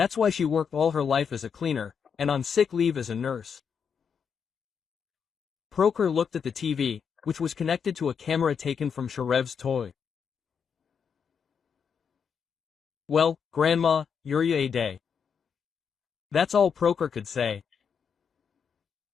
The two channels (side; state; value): right; quieter; 6.8 dB